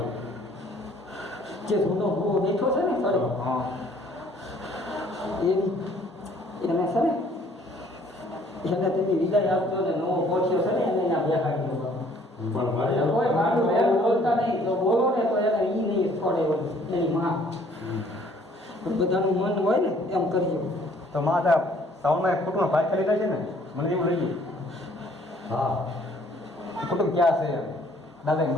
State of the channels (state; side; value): normal; both; correlation 0.59